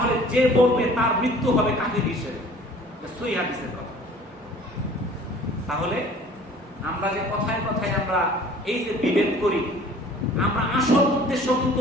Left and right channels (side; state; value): both; normal; correlation 0.50